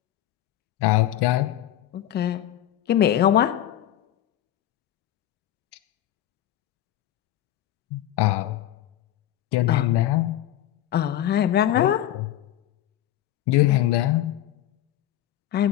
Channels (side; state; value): right; quieter; 12.5 dB